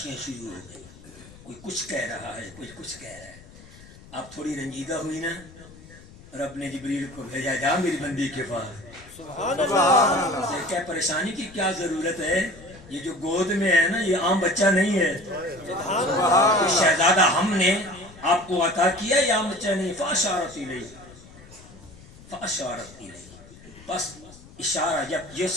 شروع ہو گئی, کوئی کچھ کہہ رہا ہے, کوئی کچھ کہہ رہا ہے. آپ تھوڑی رنجیدہ ہوئی نا, رب نے جبریل کو بھیجا, جا میری بندی کے پاس, کیا پریشانی کی کیا ضرورت ہے, یہ جو گود میں ہے نا یہ عام بچہ نہیں ہے, شہزادہ ہم نے آپ کو عطا کیا, یہ عام بچہ نہیں. فاشارت الیہ, فاشارت الیہ, بس اشارہ. جب یہ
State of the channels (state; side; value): noise; left; rumble, 21 dB below the sound